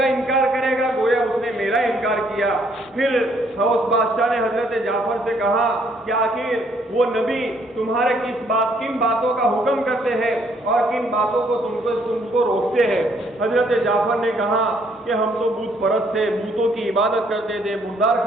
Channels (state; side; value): normal; both; correlation 0.67